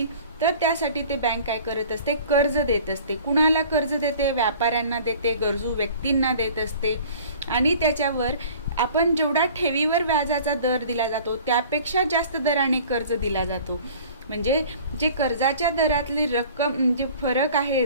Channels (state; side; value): inverted; both; correlation -0.47